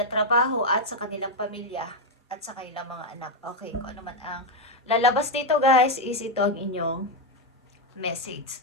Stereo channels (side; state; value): both; normal; correlation 0.04